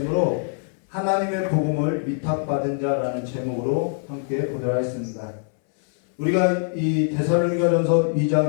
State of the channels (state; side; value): silent; right; 63 dB below the other